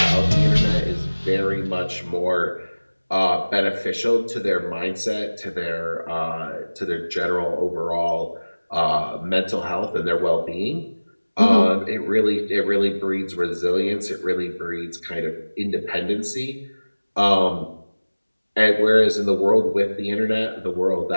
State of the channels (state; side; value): inverted; both; correlation -1.00